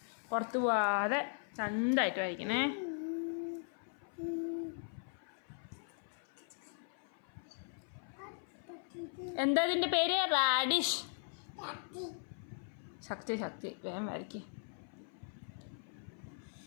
പുറത്ത് പോവാതെ ചന്തമായിട്ട് വരയ്ക്കണേ. എന്താ ഇതിൻ്റെ പേര്? റാഡിഷ്. ശക്തി വേഗം വരയ്ക്ക്.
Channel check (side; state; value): right; silent; 52 dB below the other